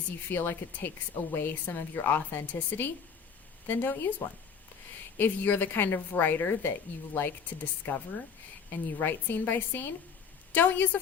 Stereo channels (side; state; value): right; quieter; 6.4 dB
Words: you feel like it takes away some of your authenticity, then don't use one. If you're the kind of writer that you like to discover and you write scene by scene, don't use a